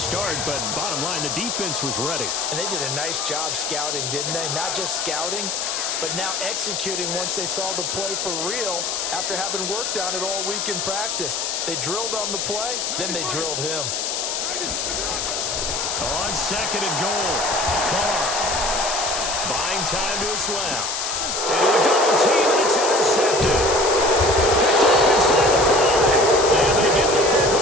but bottom line, the defense was ready. And they did a nice job scouting, didn't they? Not just scouting, but now executing once they saw the play for real after having worked on it all week in practice. They drilled on the play, then they drilled him. On second and goal, Carr. Buying time to his left. And a double team, and it's intercepted. Picked off inside the 5. And they get the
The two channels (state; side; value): noise; left; hiss, 2 dB below the sound